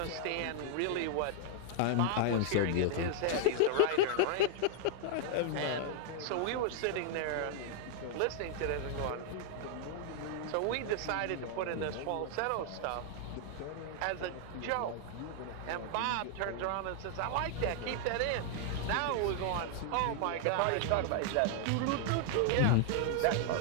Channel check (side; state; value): both; different; correlation 0.00